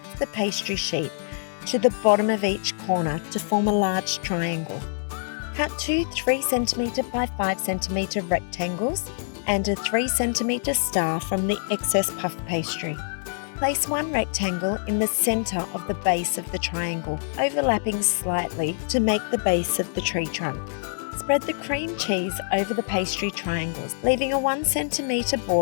of the pastry sheet to the bottom of each corner to form a large triangle. Cut 2 3cm by 5cm rectangles and a 3cm star from the excess puff pastry. Place 1 rectangle in the centre of the base of the triangle, overlapping slightly to make the base of the tree trunk. Spread the cream cheese over the pastry triangles, leaving a 1cm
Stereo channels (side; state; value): right; silent; digital silence